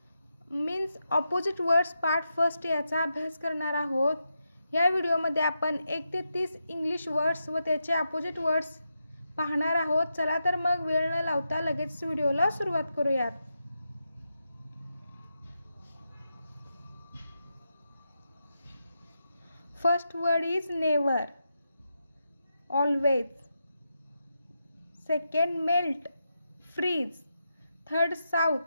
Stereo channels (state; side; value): inverted; both; correlation -0.86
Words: means opposite words part first याचा अभ्यास करणार आहोत. या व्हिडिओमध्ये आपण 1 ते 30 इंग्लिश वर्ड्स व त्याचे ऑपोजिट वर्ड्स पाहणार आहोत. चला तर मग वेळ न लावता लगेच व्हिडिओला सुरुवात करूयात. First word is never, always. Second, melt, freeze. Third,